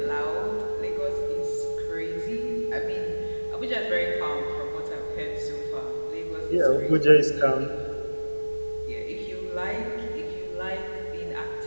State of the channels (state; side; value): inverted; both; correlation -1.00